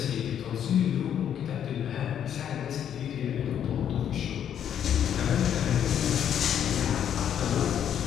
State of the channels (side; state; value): right; quieter; 9.4 dB